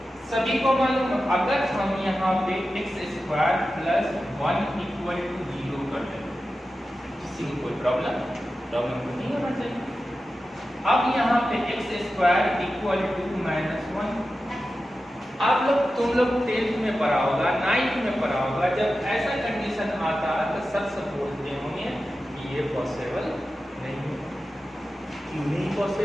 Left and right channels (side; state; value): both; normal; correlation 0.93